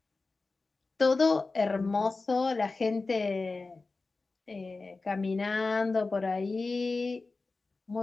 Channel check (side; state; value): right; quieter; 3.7 dB